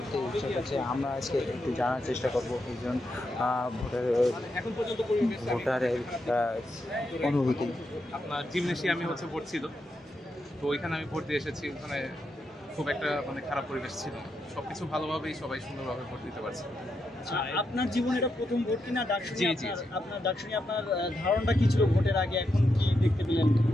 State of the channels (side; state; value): both; normal; correlation 0.83